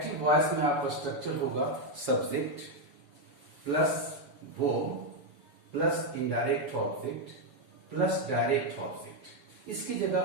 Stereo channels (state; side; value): late; left; 6.9 ms